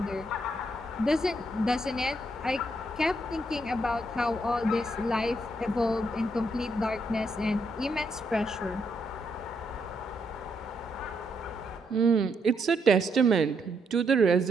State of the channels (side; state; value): both; normal; correlation 0.76